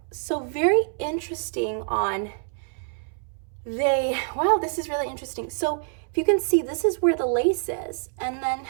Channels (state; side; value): silent; left; 61 dB below the other